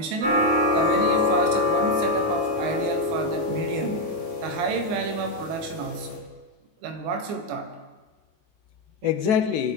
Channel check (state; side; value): late; left; 19 ms